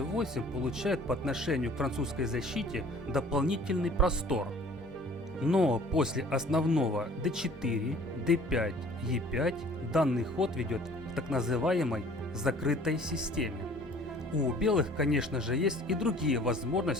получает по отношению к французской защите дополнительный простор. Но после основного d4, d5, e5 данный ход ведет к так называемой закрытой системе. У белых, конечно же, есть и другие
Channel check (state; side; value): normal; both; correlation 0.51